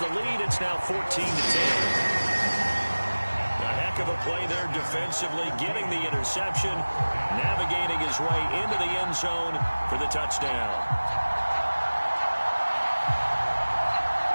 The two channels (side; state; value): both; inverted; correlation -1.00